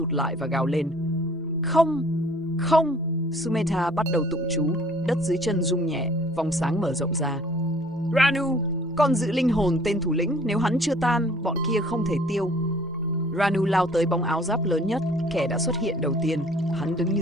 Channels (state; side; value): normal; both; correlation 0.55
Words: lại và gào lên. Không! Không! Sumedha bắt đầu tụng chú. Đất dưới chân rung nhẹ, vòng sáng mở rộng ra. Ranu! Con giữ linh hồn tên thủ lĩnh, nếu hắn chưa tan, bọn kia không thể tiêu. Ranu lao tới bóng áo giáp lớn nhất, kẻ đã xuất hiện đầu tiên. Hắn đứng như